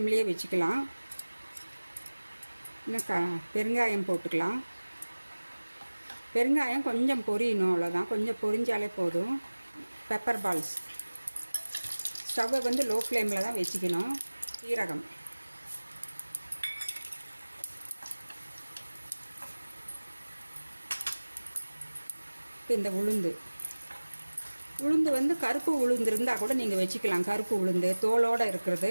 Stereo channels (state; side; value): inverted; both; correlation -1.00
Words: வச்சுக்கலாம். இன்னும் பெருங்காயம் போட்டுக்கலாம். பெருங்காயம் கொஞ்சம் பொரியணும், அவ்வளோதான், கொஞ்சம் பொரிஞ்சாலே போதும். Pepper balls. ஸ்டவ்வை லோ ஃப்ளேமில் தான் வச்சுக்கணும். சீரகம், இந்த உளுந்து கருப்பு உளுந்து இருந்தால் கூட நீங்கள் வச்சுக்கலாம். கருப்பு உளுந்து தோலோடு